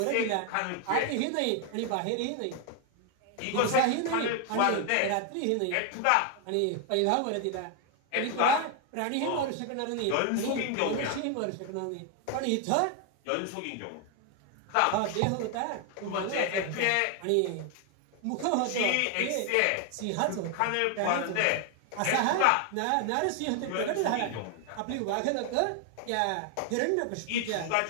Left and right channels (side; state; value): both; different; correlation 0.00